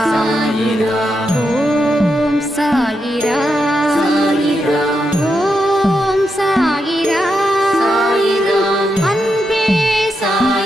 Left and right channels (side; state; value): both; normal; correlation 0.84